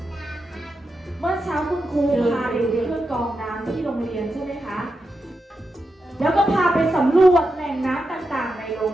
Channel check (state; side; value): normal; both; correlation 0.88